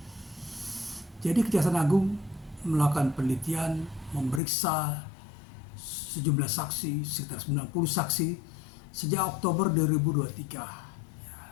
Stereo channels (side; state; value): right; drops out; at 4.4 s